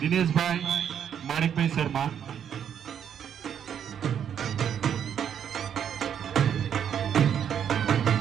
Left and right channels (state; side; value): quieter; left; 8.7 dB